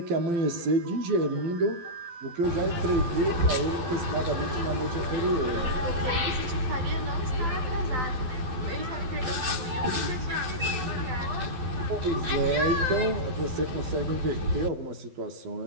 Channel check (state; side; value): late; left; 12 ms